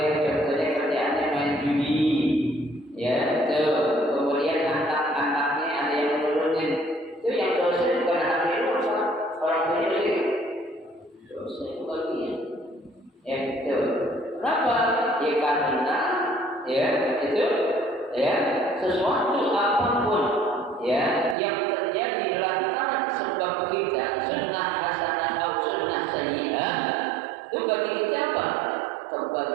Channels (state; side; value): drops out; left; at 21.4 s